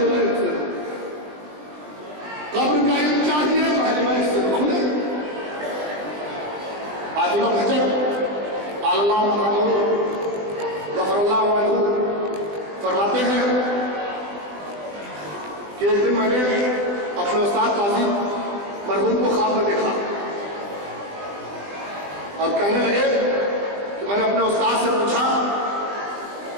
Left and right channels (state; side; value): late; left; 20 ms